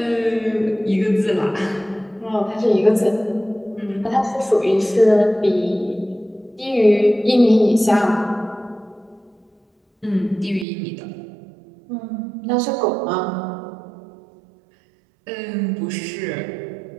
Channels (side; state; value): left; drops out; at 10.7 s